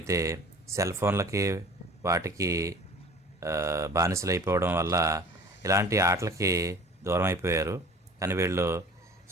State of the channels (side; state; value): both; normal; correlation 0.45